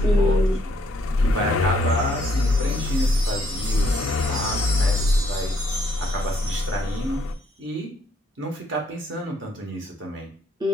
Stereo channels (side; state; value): both; normal; correlation 0.69